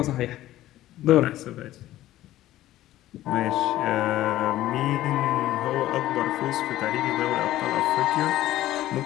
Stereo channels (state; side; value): quieter; right; 14.6 dB